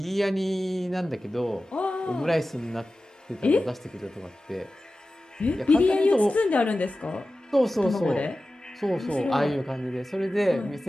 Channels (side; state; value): both; normal; correlation 0.95